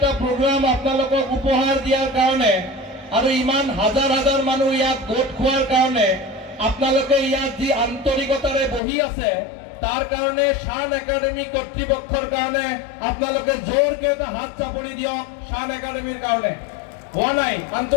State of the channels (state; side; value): drops out; right; at 8.8 s